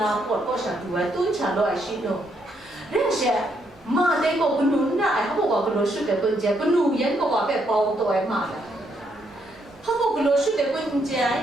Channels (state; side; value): normal; both; correlation 0.75